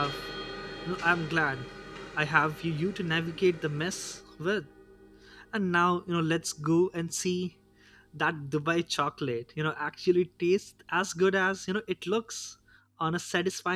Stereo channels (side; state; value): both; identical; correlation 1.00